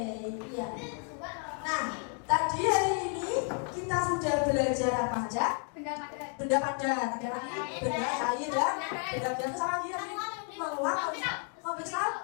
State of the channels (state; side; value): quieter; right; 38.5 dB